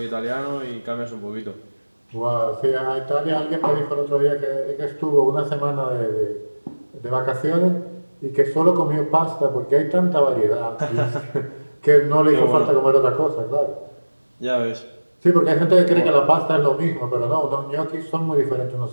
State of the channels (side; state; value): both; inverted; correlation -1.00